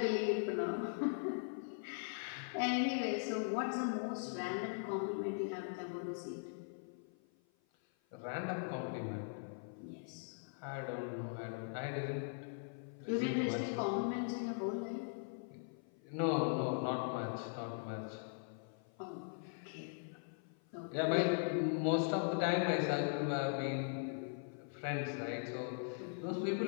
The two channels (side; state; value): right; silent; 51 dB below the other